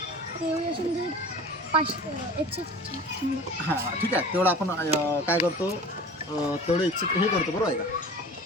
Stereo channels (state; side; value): normal; both; correlation 0.39